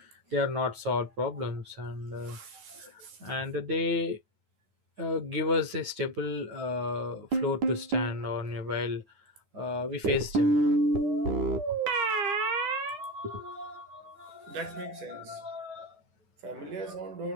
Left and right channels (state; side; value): late; left; 9.3 ms